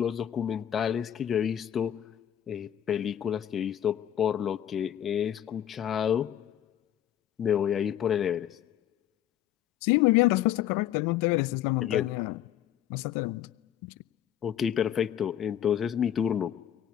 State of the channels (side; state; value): right; quieter; 10.8 dB